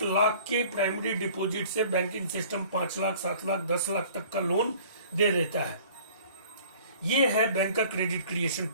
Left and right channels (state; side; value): inverted; both; correlation -0.50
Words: लाख के प्राइमरी डिपॉजिट से बैंकिंग सिस्टम 5 लाख 7 लाख 10 लाख तक का लोन दे देता है। ये है बैंक का क्रेडिट क्रिएशन